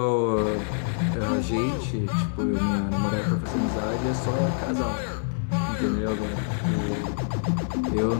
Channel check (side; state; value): right; silent; digital silence